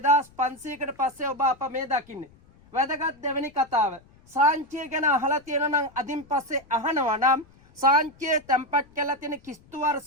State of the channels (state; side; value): noise; left; rumble, 28 dB below the sound